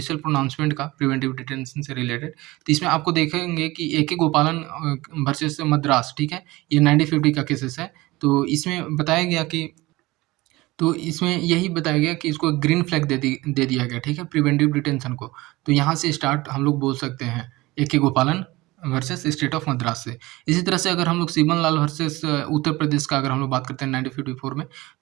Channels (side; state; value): left; quieter; 20.4 dB